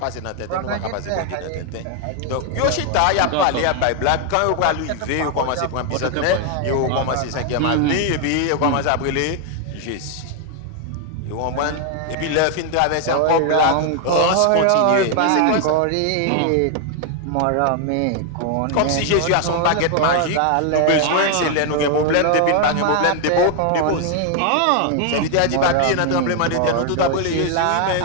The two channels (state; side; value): different; both; correlation 0.00